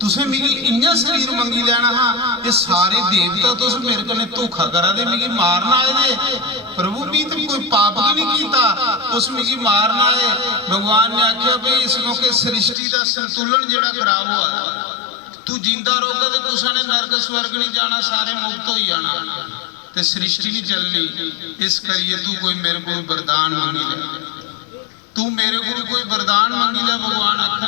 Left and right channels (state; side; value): drops out; right; at 12.8 s